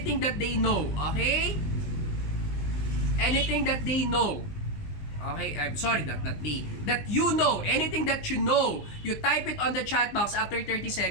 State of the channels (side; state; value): right; late; 20 ms